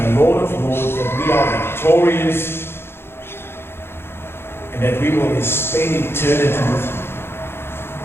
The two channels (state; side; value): late; right; 0.11 ms